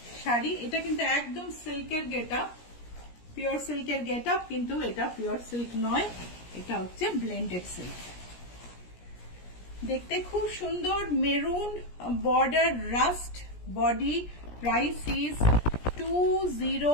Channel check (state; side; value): late; right; 17 ms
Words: শাড়ি। এটা কিন্তু একদম সিল্কের গেটআপ, পিওর সিল্কের গেটআপ, কিন্তু এটা পিওর সিল্ক নয়, এটা হচ্ছে ব্লেন্ডেড সিল্ক। দেখতে খুব সুন্দর, maroon border, rust body. Price is